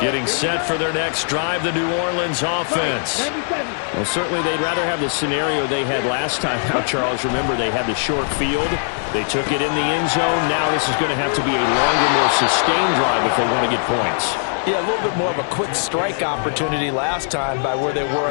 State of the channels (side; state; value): right; silent; 66 dB below the other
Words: Getting set for their next drive, the New Orleans offense. Well, certainly they'd rather have the scenario they had last time out, Charles. Remember, they had the short field. They took it in the end zone. Now this is going to have to be a longer, more sustained drive if they want to get points. Yeah, a little bit more of a quick strike opportunity last time by where they were